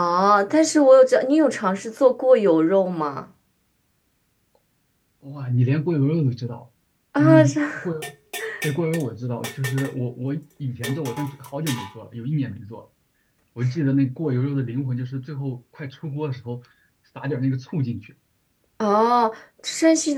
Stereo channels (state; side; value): identical; both; correlation 1.00